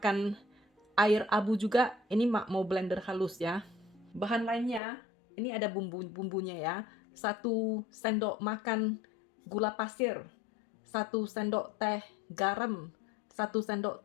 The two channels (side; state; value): right; drops out; at 4.8 s